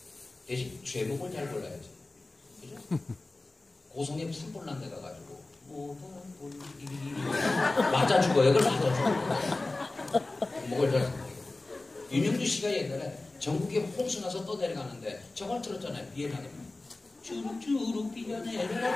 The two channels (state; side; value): quieter; right; 3.1 dB